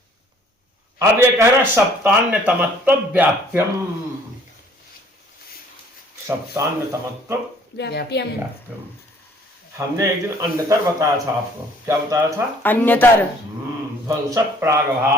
अब ये कह रहा सप्तान्य तमत्व व्याप्यम। सप्तान्य तमत्व व्याप्यम। व्याप्यम। हमने एक दिन अन्यतर बताया था आपको। क्या बताया था? अन्यतर। ध्वंस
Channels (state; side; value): normal; both; correlation 0.58